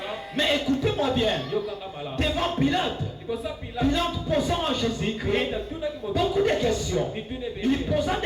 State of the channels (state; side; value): identical; both; correlation 1.00